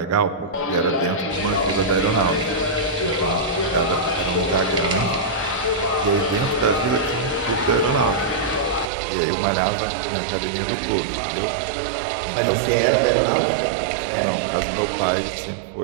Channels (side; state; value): left; drops out; at 8.8 s